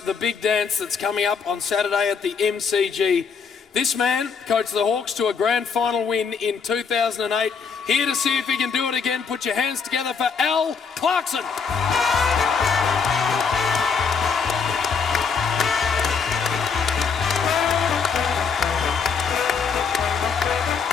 big dance that's coming up on Saturday at the MCG This man coached the Hawks to a grand final win in 2008. Here to see if he can do it again. Put your hands together for Al Clarkson.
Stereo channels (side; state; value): right; quieter; 5.8 dB